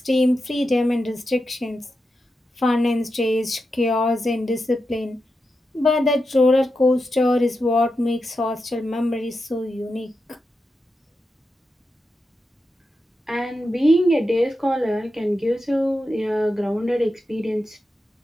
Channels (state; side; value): normal; both; correlation 0.88